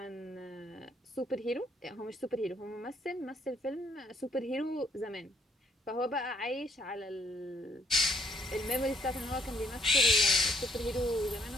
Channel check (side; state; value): both; normal; correlation 0.69